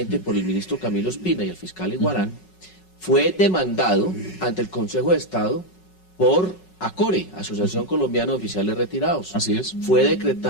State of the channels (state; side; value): late; right; 5.4 ms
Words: por el ministro Camilo Espina y el fiscal Iguarán, fue demandado ante el Consejo de Estado por ACORE, Asociación Colombiana de Oficiales Retirados. Así es. Fue